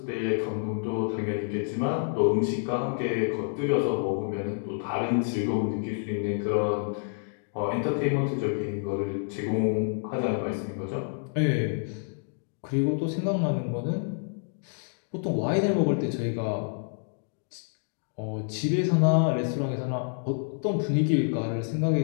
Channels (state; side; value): silent; right; digital silence